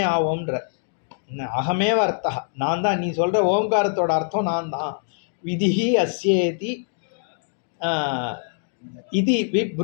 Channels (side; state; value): right; silent; 63 dB below the other